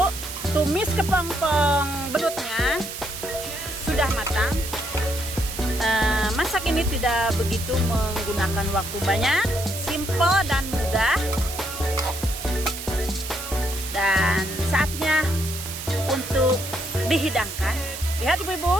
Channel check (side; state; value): right; noise; hiss, 8 dB below the sound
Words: tumis kepompong belutnya sudah matang. Masak ini tidak begitu menggunakan waktu banyak, simple dan mudah. Dan saatnya untuk dihidangkan. Lihat